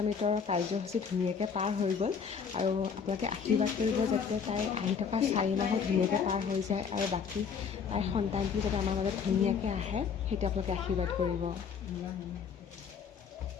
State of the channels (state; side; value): quieter; right; 6.4 dB